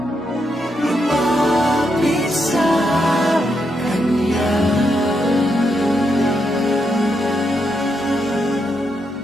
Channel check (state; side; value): normal; both; correlation 0.81